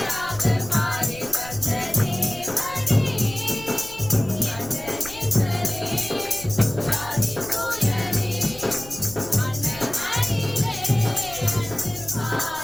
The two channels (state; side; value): noise; left; rumble, 18 dB below the sound